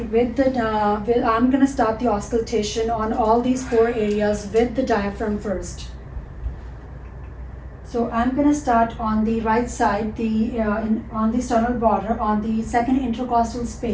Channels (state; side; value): identical; both; correlation 1.00